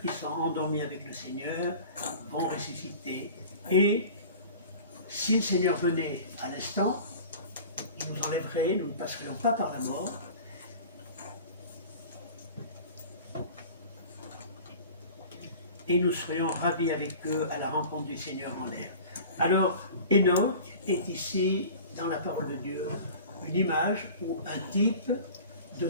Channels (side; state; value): both; inverted; correlation -0.40